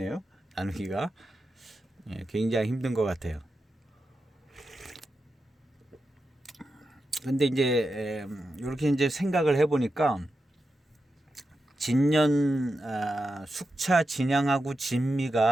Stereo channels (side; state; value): both; normal; correlation 0.89